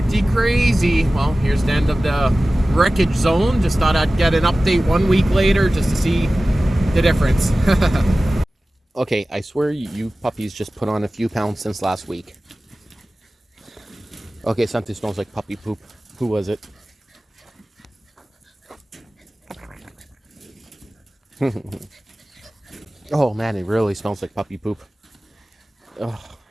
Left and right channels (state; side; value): normal; both; correlation 0.96